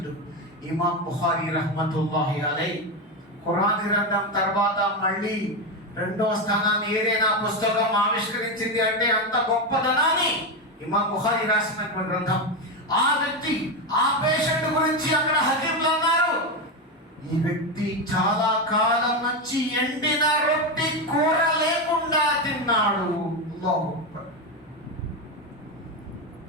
ఇమాం బుఖారీ రహమతుల్లాహి అలైహి ఖురాన్ గ్రంథం తర్వాత మళ్ళీ 2వ స్థానాన్ని ఏదైనా పుస్తకం ఆవిష్కరించింది అంటే అంత గొప్పదనాన్ని ఇమాం బుఖారీ రాసినటువంటి గ్రంథం. ఆ వ్యక్తి, ఆ పేషెంట్ గురించి అక్కడ హకీములు అన్నారు, ఈ వ్యక్తి చాలా కాలం నుంచి ఎండిన రొట్టె కూర లేకుండా తిన్నాడు.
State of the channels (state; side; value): normal; both; correlation 0.12